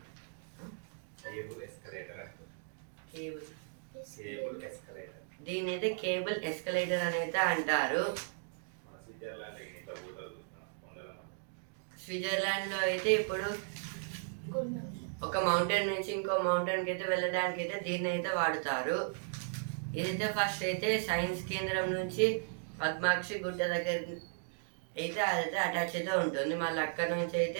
Cable cable escalator. దీని అయితే కేబుల్ ఎస్కలేటర్ అని అయితే అంటారు. మన స్విట్జర్లాండ్ ఇట్లా పోతారు చూస్తున్నా కొండల మధ్య. స్విట్జర్లాండ్ లో అయితే ఇప్పుడు కొన్నాం. ఒక మౌంటైన్ నుంచి ఇంకో మౌంటైన్ కి అయితే వెళ్ళడానికి అయితే దీన్ని అయితే వాడుతారు. ఇదైతే ఫస్ట్ అయితే సైన్స్ కేంద్రం నుంచి పద్మాక్షి గుట్ట దగ్గర అయితే అదైతే అటాచ్ అయితే ఉంటుంది. మళ్ళీ అక్కడ నుంచి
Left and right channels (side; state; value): left; silent; digital silence